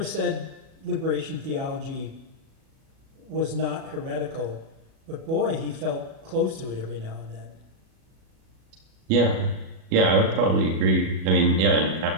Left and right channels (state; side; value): late; left; 37 ms